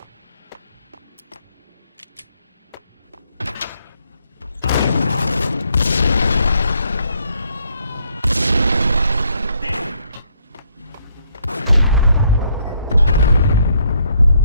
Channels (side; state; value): both; inverted; correlation -0.70